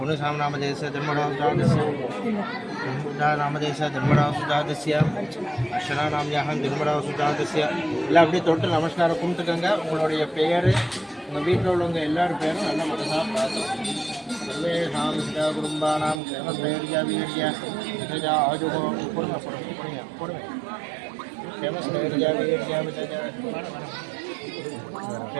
जन्मरावसुजातस्य जन्मरावसुजातस्य அர்ச்சனாநாம்யாகம் ஜன்மராவசுஜாதஸ்ய எல்லாம் அப்படியே தொட்டு நமஸ்காரம் கும்பிட்டுக்கங்க. உங்களுடைய பெயர், உங்கள் வீட்டில் உள்ளவங்க எல்லாரும் பேரும் நல்ல மனசாக பார்த்துக்கணும். சர்வேஷாம் சிதா குடும்பானாம் கேமஸ்தைர்யா வீர்யா விதஜா ஆஜுகோ பொறுமை பொறுமை கேமஸ்தைர்யா வீர்யா விதஜா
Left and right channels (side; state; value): left; drops out; at 16.2 s